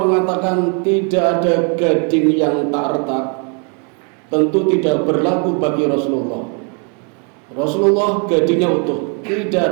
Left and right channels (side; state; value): left; quieter; 37.8 dB